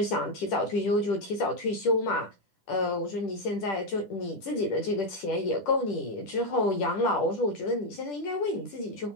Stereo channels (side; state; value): right; late; 10 ms